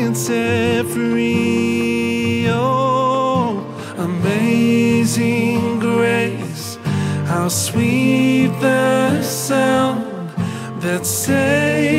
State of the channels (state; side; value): identical; both; correlation 1.00